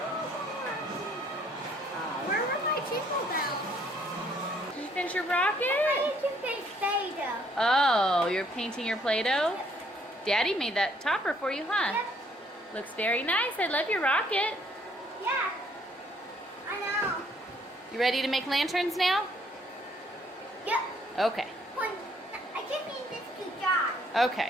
Where were my chisel bells? You finish your rocket? I need to paint Play-Doh. Oh, you're painting your Play-Doh? Daddy made that topper for you, huh? Yep. Looks very nice. I love your rocket. Yeah. I know. You ready to make lanterns now? Yep. Okay. I just need this to dry.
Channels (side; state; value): both; normal; correlation 0.65